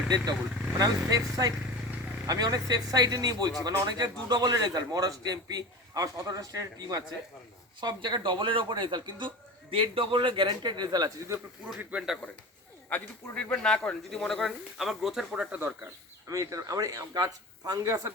ডেট ডবল। মানে আমি অনেক সেফ সাইডে নিয়ে বলছি, মানে অনেক জায়গায় 2 ডবলের রেজাল্ট, মহারাষ্ট্র এমপি আমার 17টা স্টেটের টিম আছে, সব জায়গায় ডবলের ওপর রেজাল্ট, কিন্তু 1.5 ডবলের গ্যারেন্টেড রেজাল্ট আছে যদি আপনি পুরো ট্রিটমেন্টটা করেন। আর যদি পুরো ট্রিটমেন্ট না করেন, যদি মনে করেন আমার গ্রোথের প্রোডাক্টটা দরকার, আমার গাছ ফাঙ্গাসের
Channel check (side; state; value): both; normal; correlation 0.32